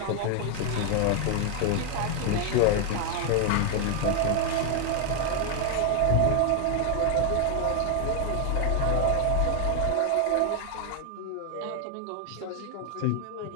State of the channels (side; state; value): both; different; correlation 0.00